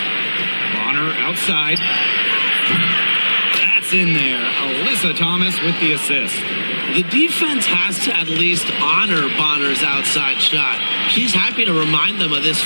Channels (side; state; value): both; inverted; correlation -1.00